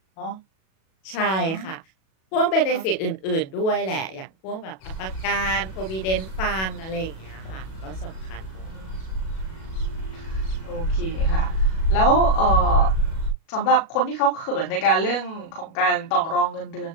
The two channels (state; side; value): late; right; 37 ms